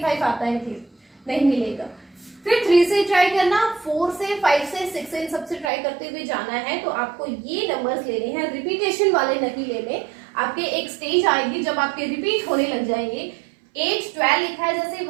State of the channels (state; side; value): drops out; left; at 5.7 s